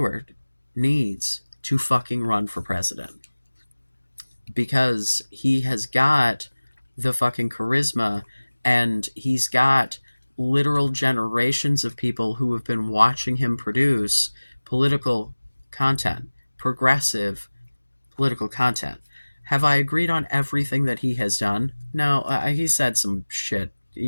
needs to fucking run for president, because he has got the fucking charisma, and he's got literal generations of people who have been watching him produce political content, progressive political content. Have I agreed on everything that he has done? No, he said some shit,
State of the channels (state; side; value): inverted; both; correlation -1.00